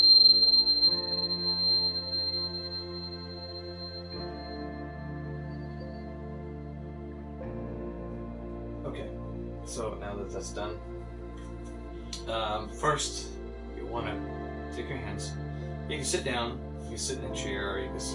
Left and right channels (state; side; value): identical; both; correlation 1.00